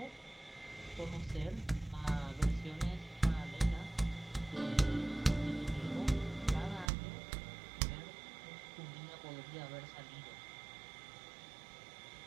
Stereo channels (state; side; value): drops out; left; at 6.9 s